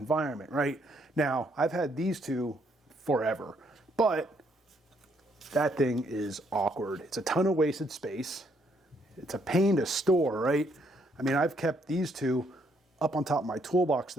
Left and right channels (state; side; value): normal; both; correlation 0.71